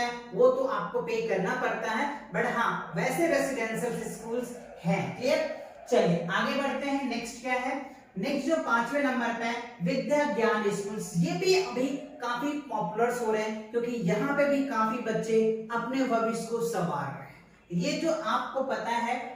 वो तो आपको पे करना पड़ता है, बट हाँ वैसे रेसिडेंशियल स्कूल्स हैं। क्लियर? चलिए आगे बढ़ते हैं। नेक्स्ट क्या है? नेक्स्ट जो 5वें नंबर पे है, विद्या ज्ञान स्कूल्स। ये भी अभी काफी पॉपुलर हो रहे हैं, क्योंकि यहाँ पे भी काफी बच्चे अपने भविष्य को संवार रहे हैं। ये जो आपको पता है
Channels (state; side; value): identical; both; correlation 1.00